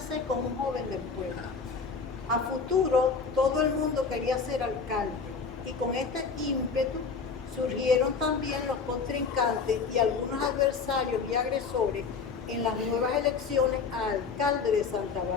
con un joven del pueblo. A futuro, todo el mundo quería ser alcalde y con este ímpetu surgieron también los contrincantes y algunos adversarios y agresores en las nuevas elecciones a alcalde de Santa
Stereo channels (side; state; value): right; quieter; 5.2 dB